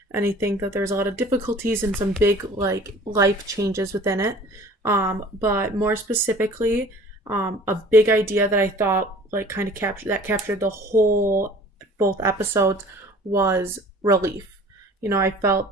I think that there's a lot of difficulties and some big like life changes within it. But more specifically, a big idea that I thought like kind of captured the whole both episodes was relief. I felt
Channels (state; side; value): normal; both; correlation 0.47